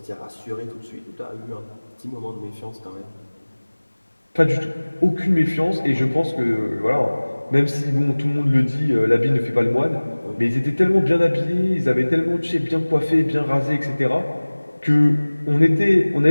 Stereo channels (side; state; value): both; inverted; correlation -1.00